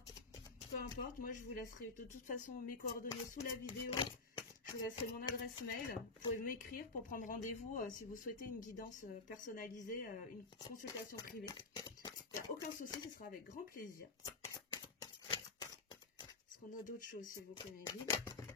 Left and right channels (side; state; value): right; quieter; 3.9 dB